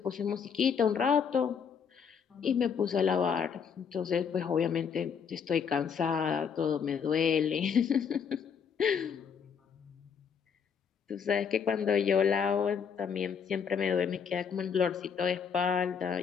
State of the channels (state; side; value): quieter; right; 6.9 dB